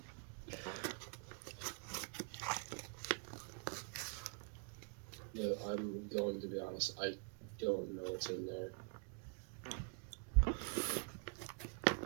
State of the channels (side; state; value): left; quieter; 38.5 dB